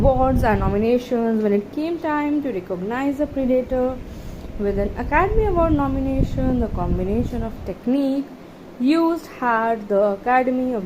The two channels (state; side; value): identical; both; correlation 1.00